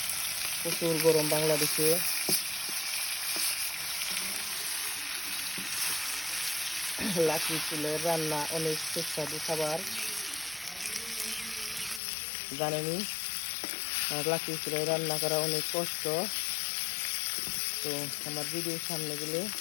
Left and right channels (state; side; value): drops out; right; at 12.0 s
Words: প্রচুর গরম বাংলাদেশে। লাকড়ি চুলের রান্না অনেক সুস্বাদু খাবার, জানেনি? আর লাকড়ি চুলায় রান্না করা অনেক কষ্ট। তো আমার ভিডিওর সামনে গেলে